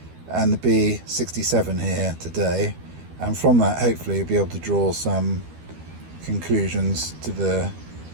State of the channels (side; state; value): left; late; 12 ms